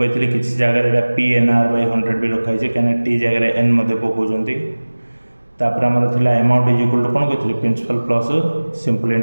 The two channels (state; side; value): inverted; both; correlation -1.00